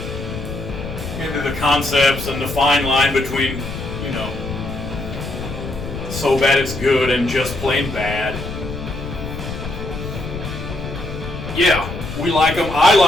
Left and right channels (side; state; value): left; noise; rumble, 8 dB below the sound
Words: concepts and the fine line between, you know, so bad it's good and just plain bad. Yeah, we like them. I